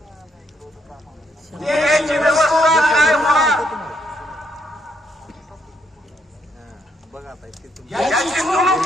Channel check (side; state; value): both; normal; correlation 0.74